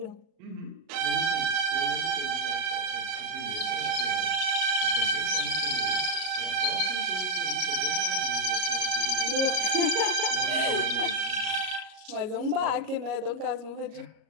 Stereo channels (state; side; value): late; left; 37 ms